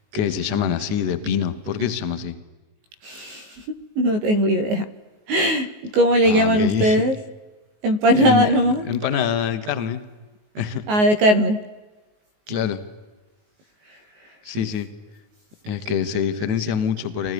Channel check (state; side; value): late; left; 19 ms